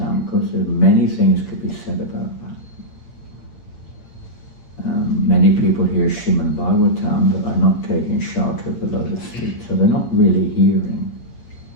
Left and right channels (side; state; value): right; late; 8.7 ms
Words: because there are many things could be said about that. Many people hear Srimad Bhagavatam but are not taking shelter of the lotus feet, so they're not really hearing.